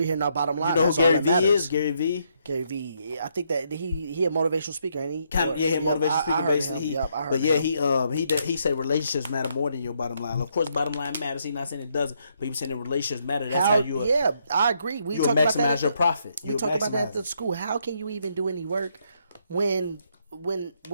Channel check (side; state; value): both; inverted; correlation -0.74